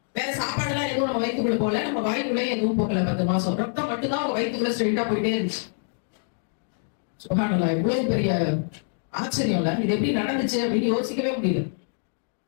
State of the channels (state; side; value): silent; right; digital silence